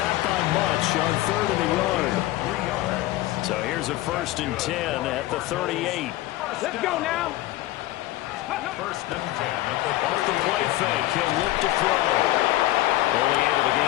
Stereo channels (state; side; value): quieter; right; 16.6 dB